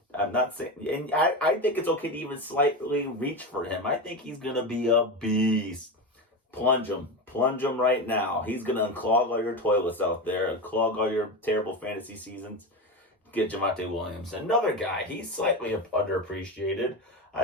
I'm not saying, and I think it's okay to even slightly reach for him. I think he's going to be a beast. Plunge him right now. He's going to unclog all your toilets out there, unclog all your terrible fantasy seasons. Get Javonte Williams. Another guy, he's slightly underappreciated.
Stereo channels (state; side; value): normal; both; correlation 0.19